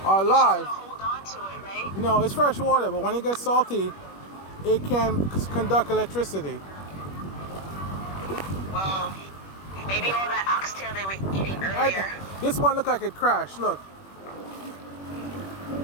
are live. Hold on to it, right? No, it's fresh water, but when it gets salty, it can conduct electricity. Well, maybe all that oxtail they were eating earlier. This one looked like it crashed. Look.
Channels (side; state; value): right; late; 21 ms